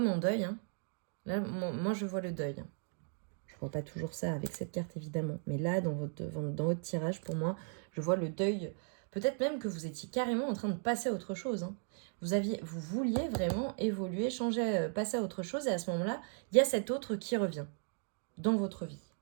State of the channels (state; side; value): silent; left; 54 dB below the other